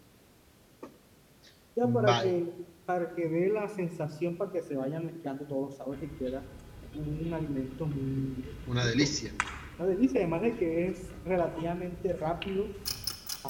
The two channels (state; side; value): identical; both; correlation 1.00